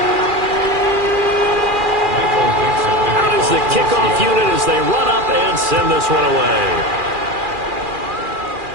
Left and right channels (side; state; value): left; late; 2.4 ms